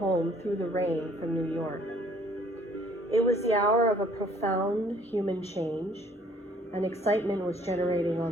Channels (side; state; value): both; normal; correlation 0.59